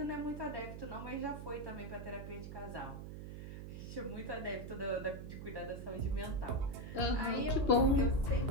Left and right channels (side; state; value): right; noise; hum, 9 dB below the sound